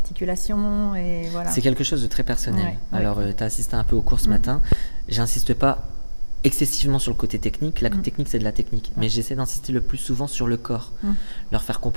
et voilà. C'est quelque chose de très personnel. Alors, tu as assisté un peu au cours ce matin. J'insiste pas excessivement sur le côté technique. La technique, c'est de la technique. Mais j'essaie d'insister le plus souvent sur le corps. Leur faire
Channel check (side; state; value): both; inverted; correlation -1.00